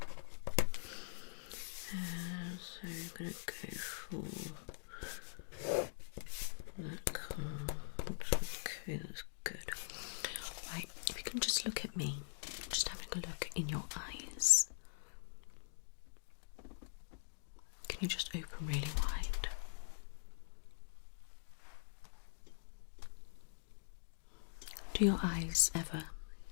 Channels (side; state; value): right; silent; digital silence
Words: So you're going to go for that card. Okay, that's good. Right, if you can just look at me, just having a look in your eyes. Can you just open really wide? Do your eyes ever